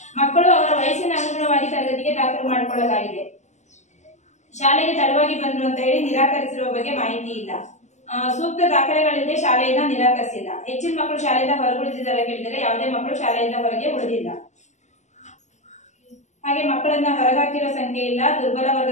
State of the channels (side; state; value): right; late; 0.34 ms